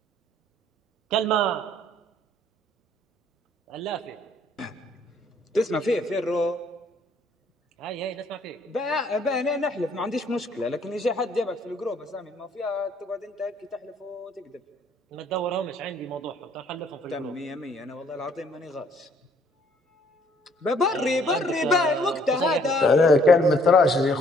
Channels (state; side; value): normal; both; correlation 0.63